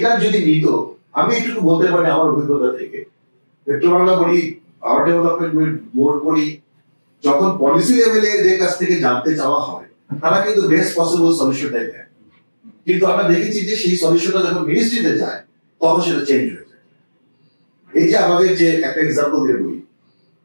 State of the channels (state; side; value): inverted; both; correlation -1.00